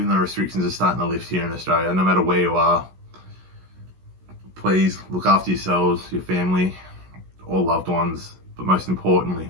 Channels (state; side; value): late; left; 16 ms